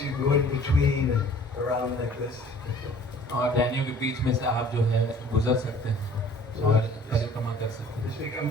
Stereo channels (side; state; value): both; normal; correlation 0.51